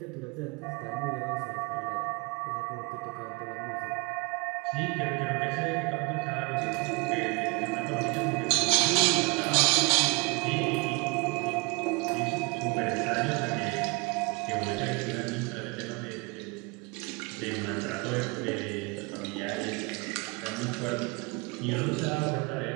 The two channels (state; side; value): quieter; left; 28.1 dB